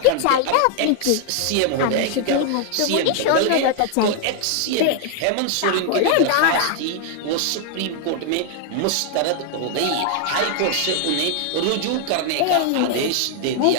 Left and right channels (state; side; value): different; both; correlation 0.00